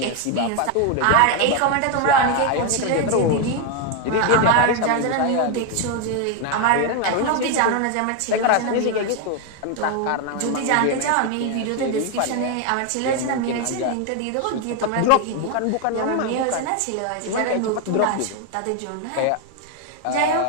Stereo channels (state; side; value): different; both; correlation 0.01